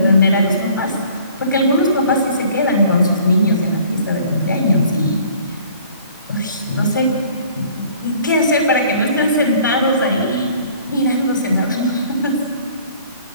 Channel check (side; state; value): both; inverted; correlation -0.53